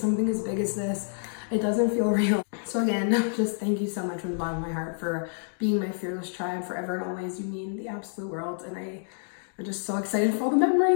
as big as this, it doesn't feel real. So again, just thank you so much from the bottom of my heart for being my fearless tribe forever and always. You mean the absolute world, and I'm just so excited for all the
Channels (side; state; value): right; silent; digital silence